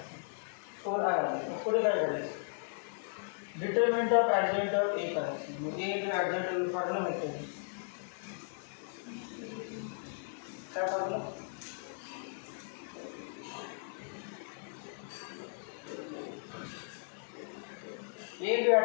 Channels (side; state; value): right; silent; digital silence